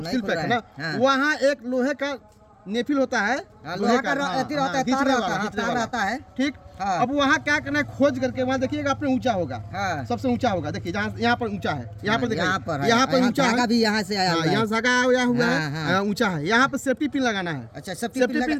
सील खुल पैक है ना। रहा है। हाँ। वहाँ एक लोहे का नेफिल होता है, हाँ, लोहा का अथी रहता है, खींचने तार रहता वाला, है, खींचने तार वाला। रहता है। ठीक। हाँ। अब वहाँ क्या करना है, खोज करके वहाँ देखिएगा, अपने ऊंचा होगा, हाँ। सबसे ऊंचा होगा। देखिए जहाँ यहाँ पर ऊंचा है, यहाँ पर यहाँ पर देखिए, है, यहाँ पर ऊंचा धागा है, भी यहाँ से आया हुआ है। यहाँ धागा आया हुआ हाँ, हाँ। है, ऊंचा है। यहाँ पर सेफ्टी पिन लगाना है। अच्छा, सेफ्टी सेफ्टी पिन पिन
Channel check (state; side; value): identical; both; correlation 1.00